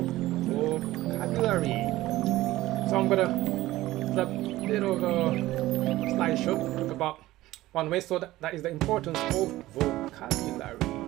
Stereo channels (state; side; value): quieter; left; 16.6 dB